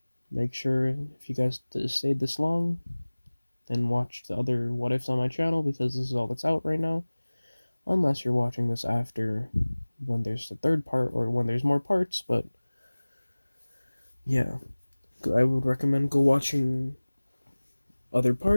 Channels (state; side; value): inverted; both; correlation -1.00